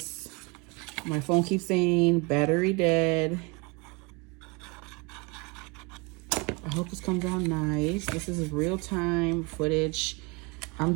My phone keeps saying battery dead. I hope this comes out nice. This is real-time footage. I'm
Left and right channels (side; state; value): left; quieter; 28.2 dB